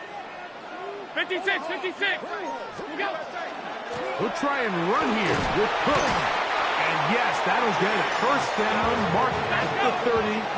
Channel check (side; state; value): both; identical; correlation 1.00